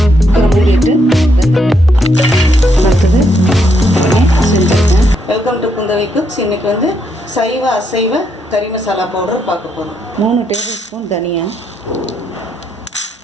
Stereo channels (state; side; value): normal; both; correlation 0.76